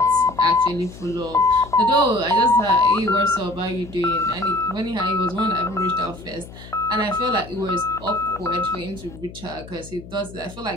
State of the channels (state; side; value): noise; left; hum, 16 dB below the sound